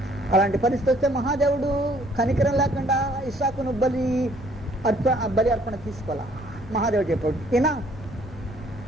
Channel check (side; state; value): both; normal; correlation 0.61